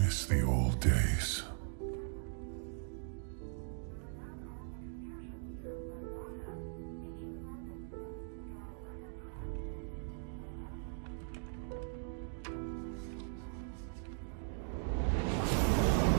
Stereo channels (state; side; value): silent; left; digital silence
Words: the old days.